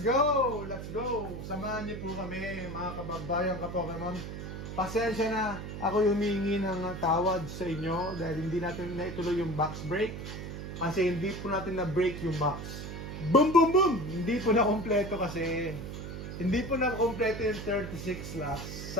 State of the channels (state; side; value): noise; right; hum, 8 dB below the sound